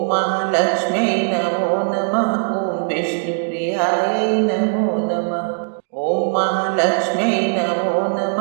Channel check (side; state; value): left; silent; digital silence